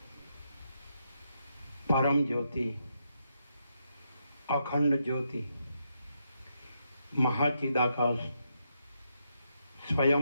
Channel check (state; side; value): inverted; both; correlation -0.81